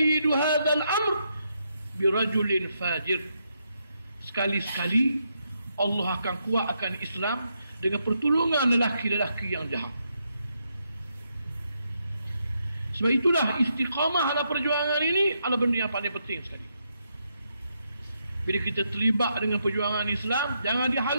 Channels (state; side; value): inverted; both; correlation -0.80